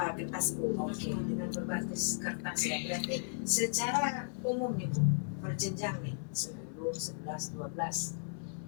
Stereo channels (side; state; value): right; silent; digital silence